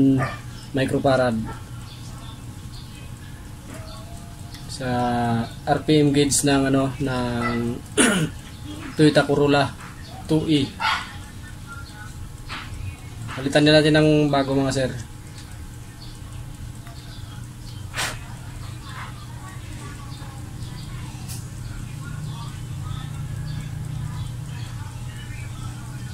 microfarad. Sa RPM gauge ng ano ng Toyota Corolla 2E. Palitan din natin ng bago mga sir.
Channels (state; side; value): identical; both; correlation 1.00